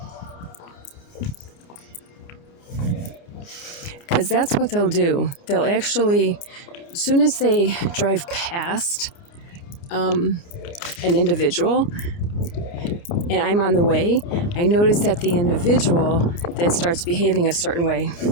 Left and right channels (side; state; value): right; late; 29 ms